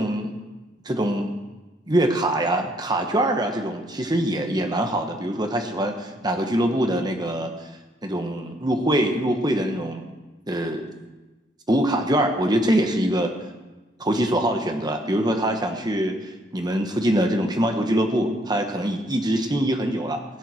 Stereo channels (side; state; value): both; normal; correlation 0.68